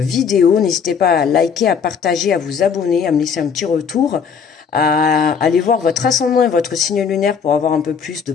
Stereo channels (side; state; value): right; quieter; 6.6 dB